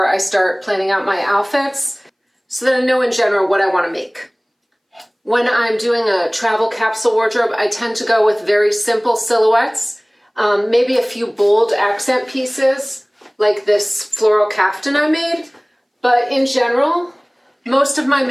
I start planning out my outfits so that I know in general what I want to make. When I'm doing a travel capsule wardrobe, I tend to go with very simple silhouettes, maybe a few bold accent pieces, like this floral caftan I made. But in general, most of my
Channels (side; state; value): both; identical; correlation 1.00